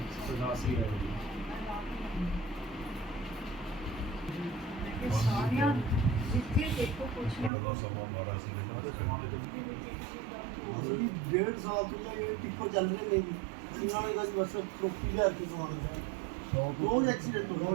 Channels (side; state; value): left; drops out; at 7.5 s